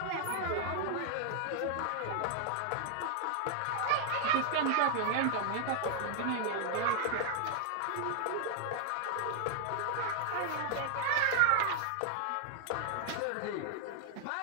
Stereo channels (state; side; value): different; both; correlation -0.01